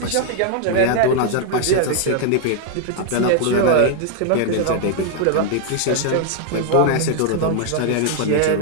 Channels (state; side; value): different; both; correlation 0.00